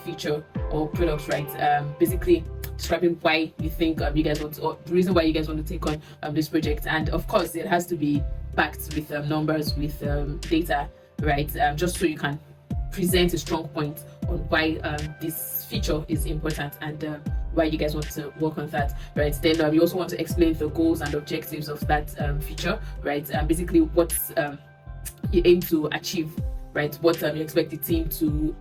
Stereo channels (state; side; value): identical; both; correlation 1.00